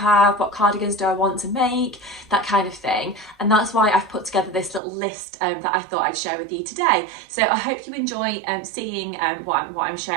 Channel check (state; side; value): drops out; left; at 4.8 s